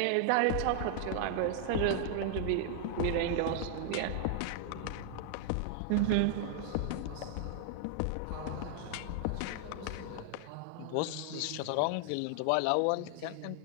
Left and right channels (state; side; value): different; both; correlation 0.00